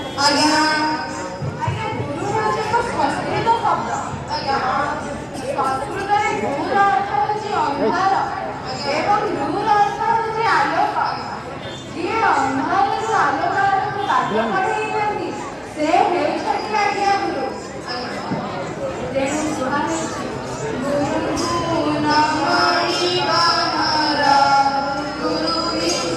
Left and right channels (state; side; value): identical; both; correlation 1.00